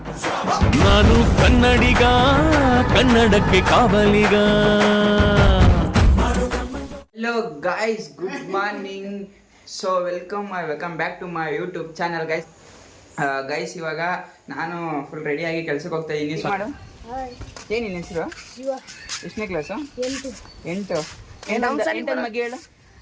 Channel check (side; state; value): both; identical; correlation 1.00